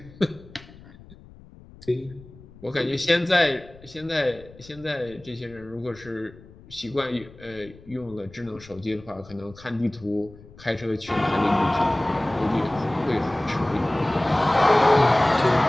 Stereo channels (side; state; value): left; noise; rumble, 21 dB below the sound